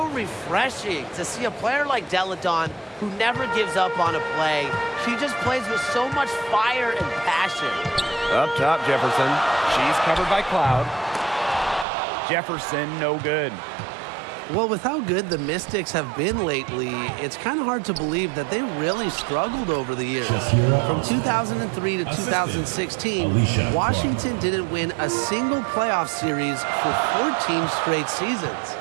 refreshing to see a player like Deladon who never gives up on a play. She just plays with so much fire and passion. Up top, Jefferson. She's covered by Cloud. Jefferson, no good. Well, with how good the Mystics have been lately, it's kind of hard to believe that they really struggled over the years. From 2003 to 2016, Washington didn't win a single playoff series for 14 straight seasons.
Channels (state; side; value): drops out; left; at 11.9 s